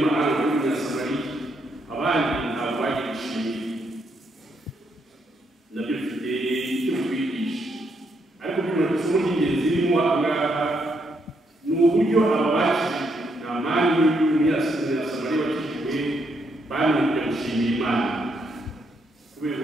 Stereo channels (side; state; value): both; normal; correlation 0.76